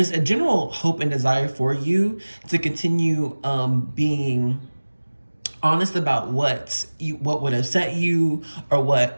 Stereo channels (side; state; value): both; inverted; correlation -1.00